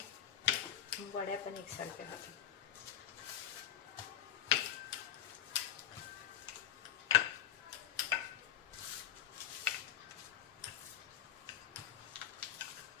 वड्या पण एकसारख्या होतात.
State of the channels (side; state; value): right; quieter; 11.0 dB